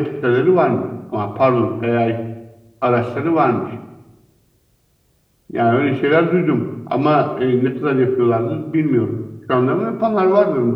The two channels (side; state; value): both; identical; correlation 1.00